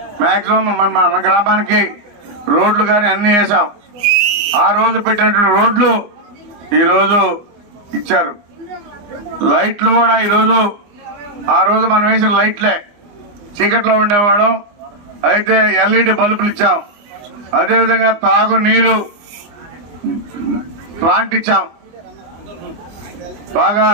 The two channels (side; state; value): left; late; 24 ms